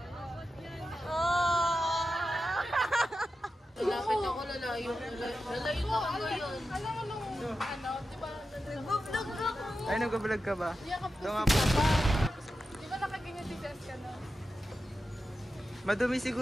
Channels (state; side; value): normal; both; correlation 0.90